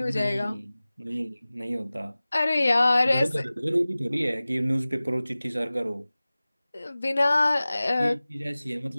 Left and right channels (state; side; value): inverted; both; correlation -0.98